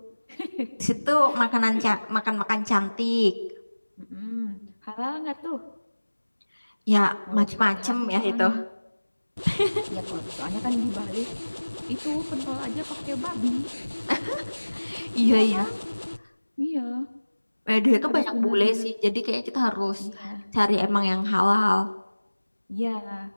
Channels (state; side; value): inverted; both; correlation -1.00